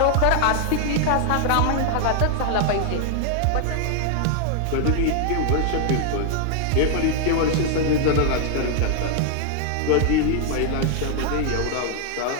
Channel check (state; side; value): different; both; correlation 0.00